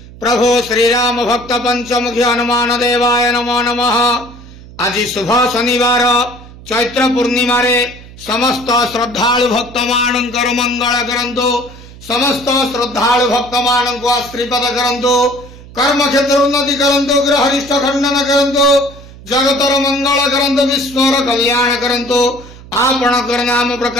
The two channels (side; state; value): right; noise; hum, 18 dB below the sound